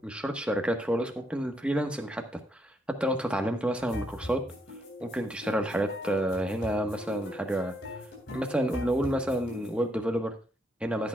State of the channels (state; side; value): normal; both; correlation 0.75